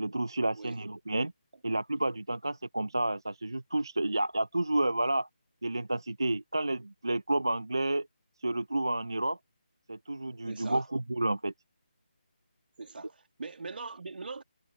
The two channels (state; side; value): inverted; both; correlation -0.96